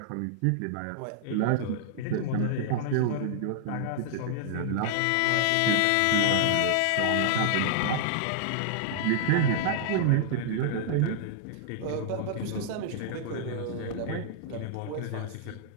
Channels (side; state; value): both; different; correlation -0.01